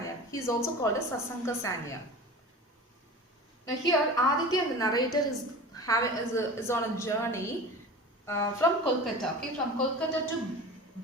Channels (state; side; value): normal; both; correlation 0.34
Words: He is also called as Sasanka Sanyal. Now here, Aditya, the narrator, is on a journey from Kolkata, okay, from Kolkata to